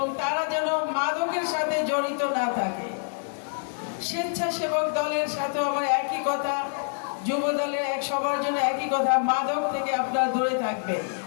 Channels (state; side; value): silent; right; digital silence